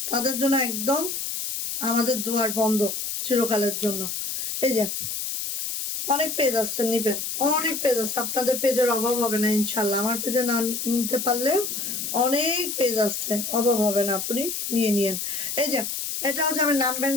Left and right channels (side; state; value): left; noise; hiss, 4 dB below the sound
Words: তাদের জন্য একদম আমাদের দুয়ার বন্ধ চিরকালের জন্য। এই যে অনেক পেজ আছে, নিবেন, অনেক পেজ আছে, আপনাদের পেজের অভাব হবে না ইনশাল্লাহ। আমার পেজে না নিতে পারলেও অনেক পেজ আছে, অভাব হবে না, আপনি নিয়ে নিয়েন। এই যে এটা হচ্ছে, আমি নাম